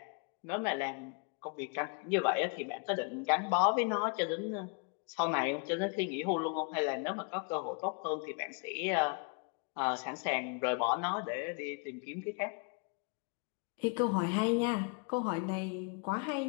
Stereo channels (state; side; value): quieter; right; 35.4 dB